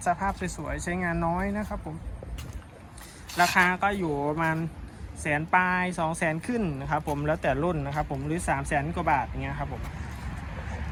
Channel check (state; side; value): identical; both; correlation 1.00